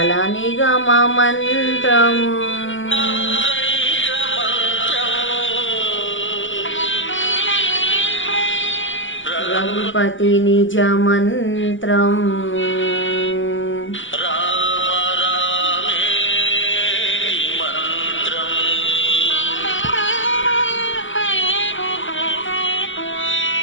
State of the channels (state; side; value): late; right; 0.56 ms